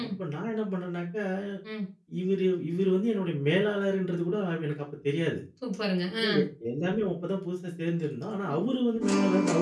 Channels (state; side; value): identical; both; correlation 1.00